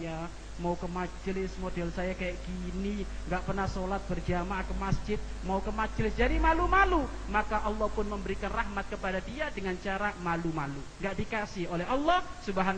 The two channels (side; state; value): both; identical; correlation 1.00